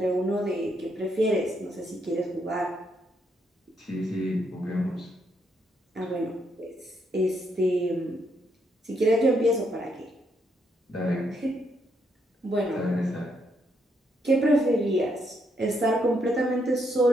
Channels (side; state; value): both; normal; correlation 0.76